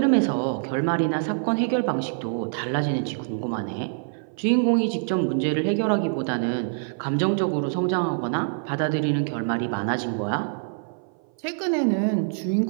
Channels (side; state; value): left; silent; 57 dB below the other